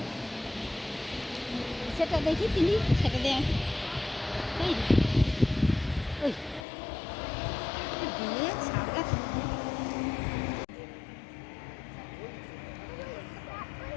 সেটা দেখি তিনি সেটা দেন ওই ওই দিয়ে সারা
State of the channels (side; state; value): right; drops out; at 6.7 s